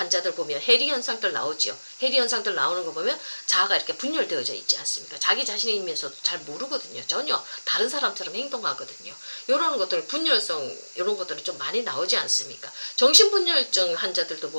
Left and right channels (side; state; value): both; inverted; correlation -1.00